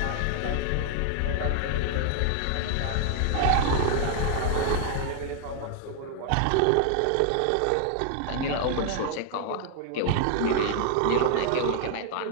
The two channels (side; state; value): both; different; correlation 0.00